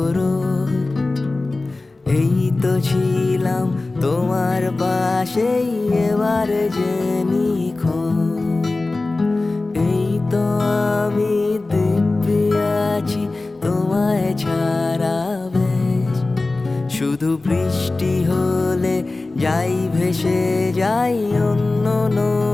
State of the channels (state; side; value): quieter; right; 3.2 dB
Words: রোজ, এই তো ছিলাম তোমার পাশেই এবার যে নিখোঁজ। এই তো আমি দিব্যি আছি তোমায় ছাড়া বেশ। শুধু বৃষ্টি হলে যাই ভেসে যাই অন্য